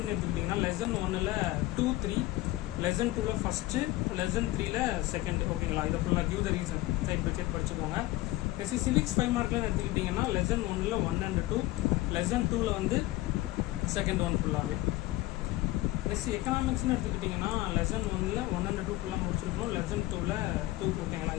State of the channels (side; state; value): right; quieter; 17.7 dB